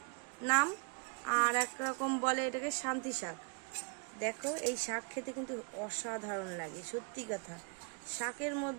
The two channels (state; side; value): quieter; left; 37.6 dB